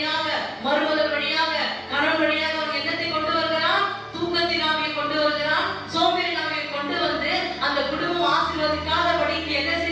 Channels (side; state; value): both; identical; correlation 1.00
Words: மருமகள் வழியாக, கணவன் வழியாக அவங்க என்னத்தை கொண்டு வருகிறான், தூக்கத்தின் ஆவியை கொண்டு வருகிறான், சோம்பேறி ஆவியை கொண்டு வந்து அந்த குடும்பம் ஆசீர்வதிக்காதபடிக்கு என்ன